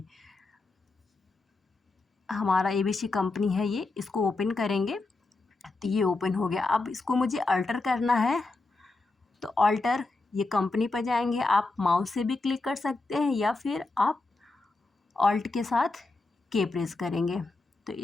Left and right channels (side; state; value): right; quieter; 3.4 dB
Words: हमारा एबीसी कंपनी है, ये इसको ओपन करेंगे तो ये ओपन हो गया। अब इसको मुझे अल्टर करना है, तो अल्टर ये कंपनी पर जाएंगे, आप माउस से भी क्लिक कर सकते हैं या फिर आप ऑल्ट के साथ के प्रेस करेंगे, तो